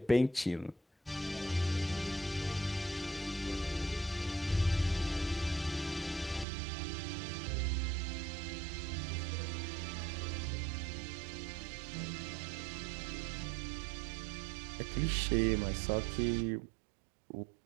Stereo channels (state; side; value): drops out; left; at 6.5 s